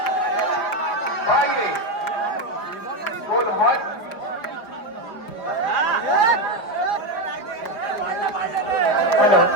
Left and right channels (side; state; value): right; late; 4.7 ms